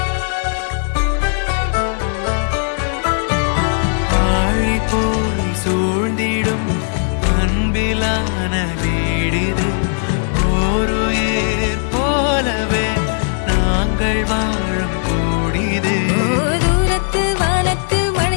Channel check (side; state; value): right; silent; 65 dB below the other